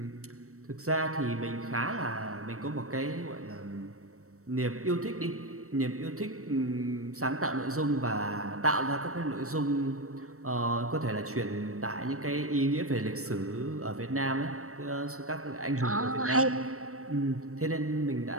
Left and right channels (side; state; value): left; late; 0.64 ms